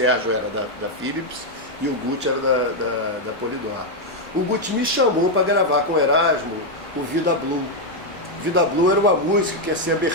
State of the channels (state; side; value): normal; both; correlation 0.01